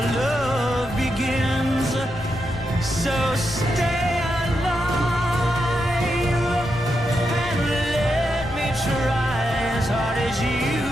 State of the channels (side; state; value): left; noise; rumble, 15 dB below the sound